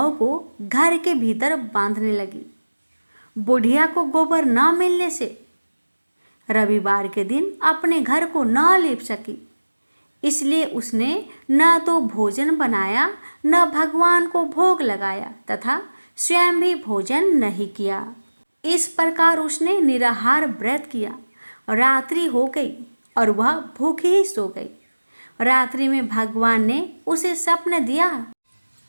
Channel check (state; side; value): inverted; both; correlation -1.00